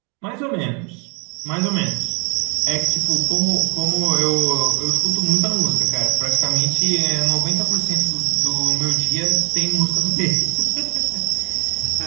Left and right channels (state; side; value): quieter; left; 31.5 dB